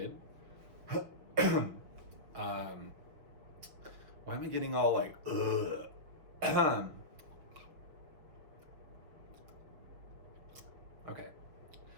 Why am I getting all like, ugh? Okay,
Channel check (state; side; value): late; left; 6.7 ms